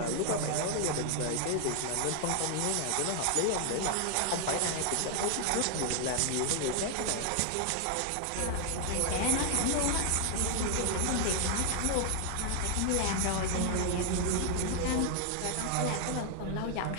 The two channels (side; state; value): both; different; correlation 0.00